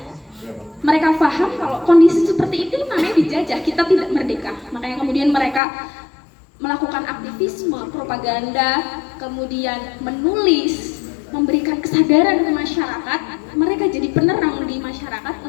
Mereka paham kalau kondisi seperti itu namanya dijajah, kita tidak merdeka. Makanya kemudian mereka melakukan aktivisme, propaganda, kemudian menulis, memberikan kesadaran ke masyarakat. Mereka jadi penerang di masyarakat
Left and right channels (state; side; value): drops out; right; at 5.6 s